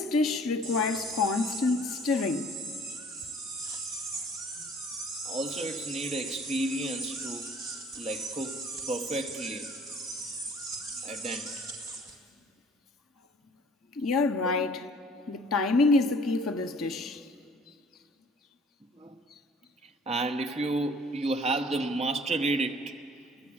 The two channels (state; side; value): normal; both; correlation 0.53